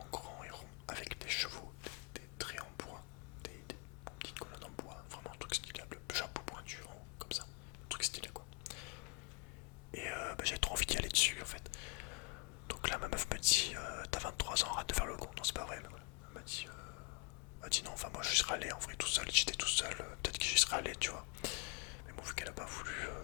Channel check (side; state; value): right; quieter; 32.7 dB